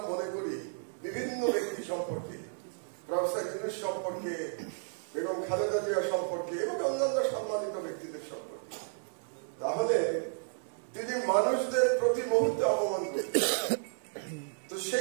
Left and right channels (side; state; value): left; silent; digital silence